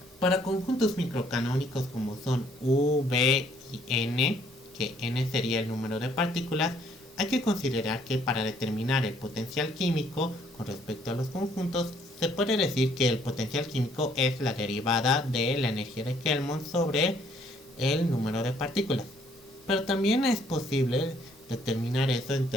Para conjuntos microcanónicos como son U, B y N, que N sería el número de partículas, hay que considerar que para determinar el potencial químico con respecto a los conjuntos, se puede decir que el potencial químico es la derivada de la energía de Helmholtz sobre el número de partículas. Pero también es posible determinar eso en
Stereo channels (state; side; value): normal; both; correlation 0.64